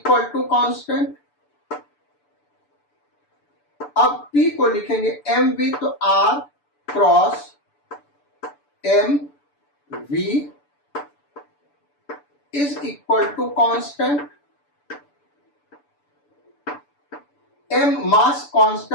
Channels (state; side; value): late; right; 6.9 ms